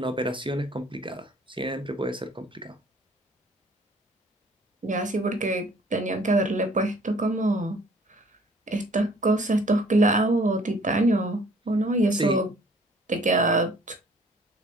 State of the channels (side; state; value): both; normal; correlation 0.56